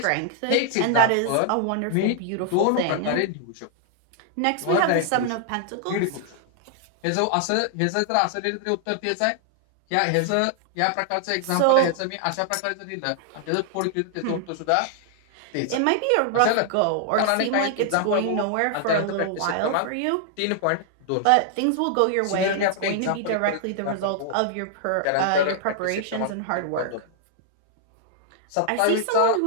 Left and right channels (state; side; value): different; both; correlation 0.00